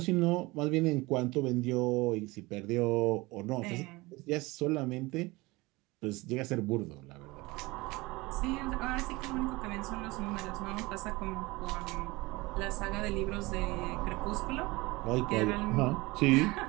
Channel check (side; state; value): left; quieter; 22.3 dB